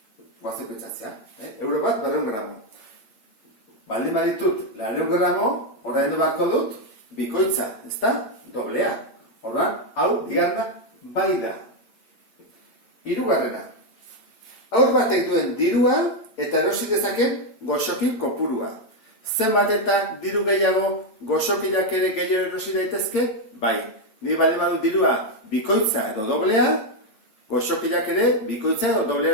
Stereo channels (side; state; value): right; late; 9.0 ms